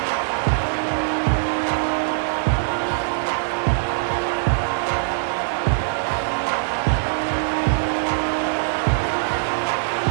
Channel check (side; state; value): left; silent; digital silence